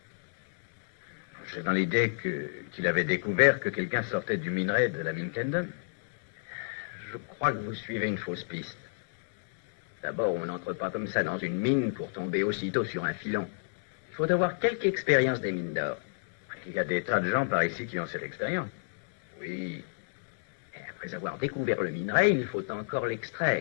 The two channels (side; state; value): right; silent; 58 dB below the other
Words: J'ai dans l'idée qu'il avait découvert que quelqu'un sortait du minerai de la mine Kendon. Je crois que vous suivez une fausse piste. D'abord, on n'entre pas comme ça dans une mine pour tomber aussitôt sur un filon. Il faut avoir quelque expérience des mines d'or. Il y a des tas de gens par ici qui ont cette expérience. Oui. Et après avoir découvert le minerai, il faut encore